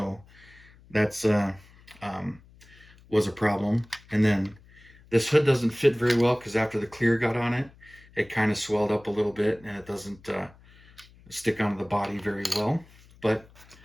that's was a problem. And then this hood doesn't fit very well because after the clear got on it, it kind of swelled up a little bit and it doesn't stick onto the body very well. But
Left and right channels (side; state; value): left; noise; hum, 25 dB below the sound